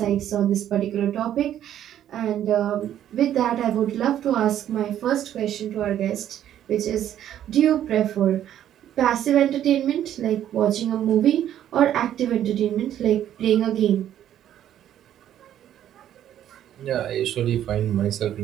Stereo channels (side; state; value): left; quieter; 11.1 dB